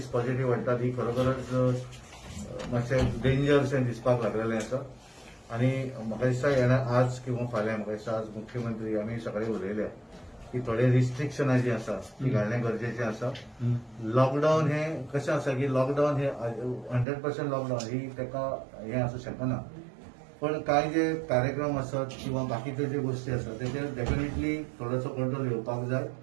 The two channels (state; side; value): drops out; left; at 17.1 s